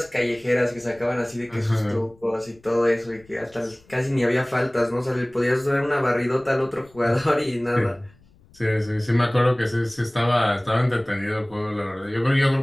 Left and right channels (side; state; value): left; noise; rumble, 28 dB below the sound